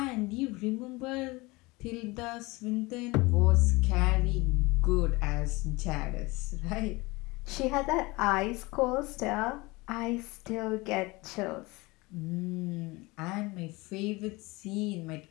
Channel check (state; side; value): quieter; right; 23.2 dB